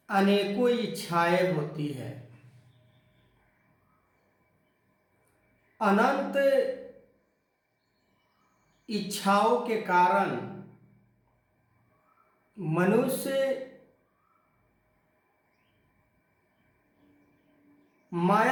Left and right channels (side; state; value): both; identical; correlation 1.00